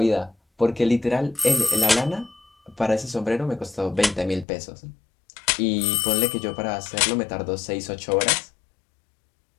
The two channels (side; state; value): right; drops out; at 4.5 s